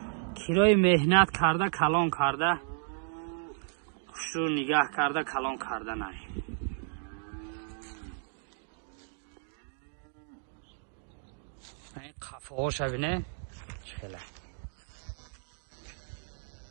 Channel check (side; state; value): left; silent; digital silence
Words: کرای مهنت کرده کلان کرده خوش رو نگاه کرده کلان کرده نه این قفه ها شبینه چخیله